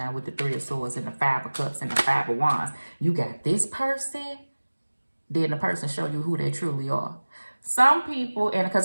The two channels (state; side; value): inverted; both; correlation -1.00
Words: with the 3 of Swords and the 5 of Cups and the 5 of Wands. You got this person, then the person show you who they truly are. Some people, and because